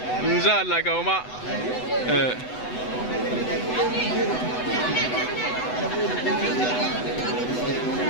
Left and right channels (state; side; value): late; right; 8.0 ms